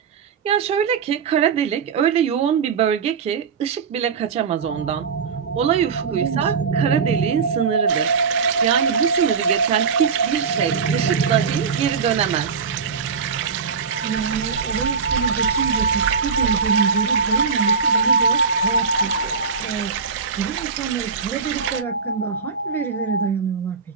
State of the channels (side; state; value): left; quieter; 5.8 dB